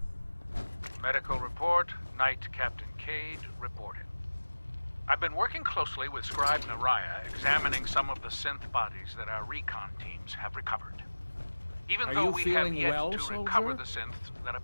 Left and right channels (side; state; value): both; inverted; correlation -1.00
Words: Medical report, Night Captain Kade reporting. I've been working closely with Scribe Naraya, examining some of the synth bodies that our recon teams have recovered. Even though we have yet to recover the synths that